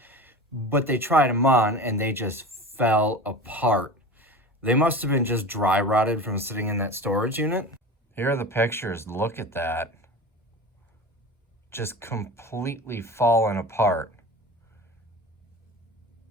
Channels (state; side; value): normal; both; correlation 0.33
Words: but they tried them on and they just fell apart. They must have been just dry rotted from sitting in that storage unit. Here are the pictures. Look at that. Just completely fallen apart.